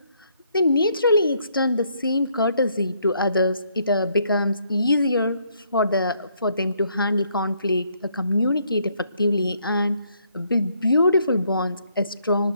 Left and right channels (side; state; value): both; inverted; correlation -0.70